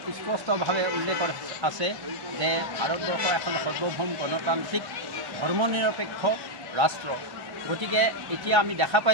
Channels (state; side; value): late; left; 1.1 ms